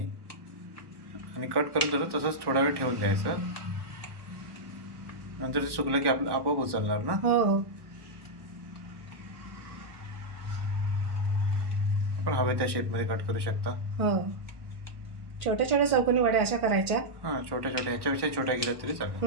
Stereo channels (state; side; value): late; left; 1.2 ms